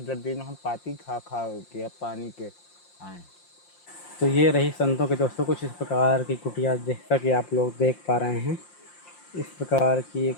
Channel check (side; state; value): right; late; 5.7 ms